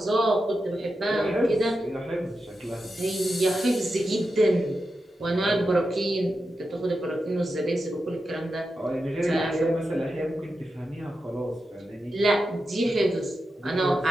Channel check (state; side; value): normal; both; correlation 0.89